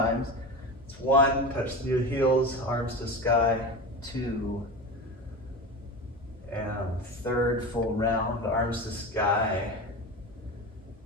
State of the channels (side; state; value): both; normal; correlation 0.26